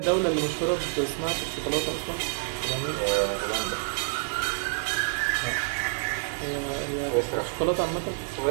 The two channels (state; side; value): silent; left; digital silence